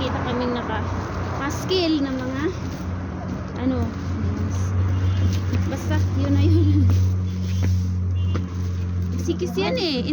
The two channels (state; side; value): identical; both; correlation 1.00